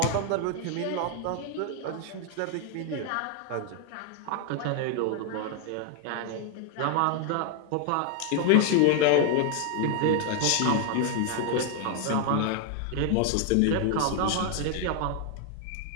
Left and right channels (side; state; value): both; different; correlation 0.00